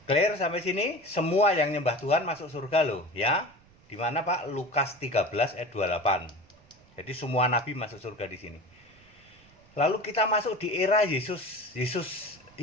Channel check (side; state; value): right; noise; rumble, 28 dB below the sound